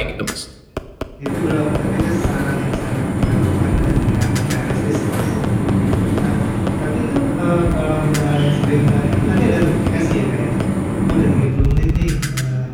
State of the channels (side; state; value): both; identical; correlation 1.00